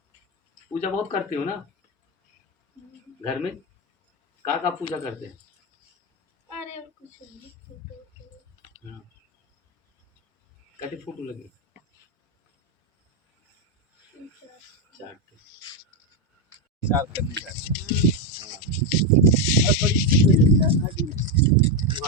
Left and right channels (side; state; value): both; normal; correlation 0.07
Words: पूजा बहुत करते हो ना घर में? का पूजा करते हैं? अरे कुछ नहीं, हाँ। कहते फोटो लगे चार करने का और बड़ी